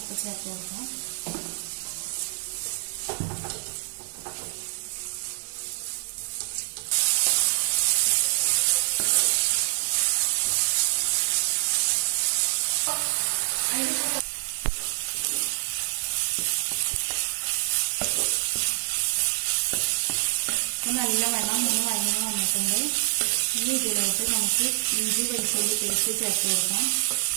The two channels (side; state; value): left; silent; digital silence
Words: ചേർത്ത് കൊടുക്കാം. നല്ലവണ്ണം വഴന്ന് വന്നിട്ടുണ്ട്. ഇനി ഇതിലോട്ട് നമുക്ക് ഇഞ്ചി വെളുത്തുള്ളി പേസ്റ്റ് ചേർത്ത് കൊടുക്കാം.